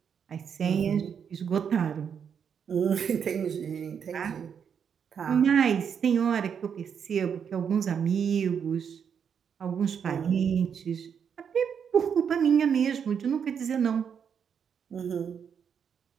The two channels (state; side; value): quieter; left; 7.4 dB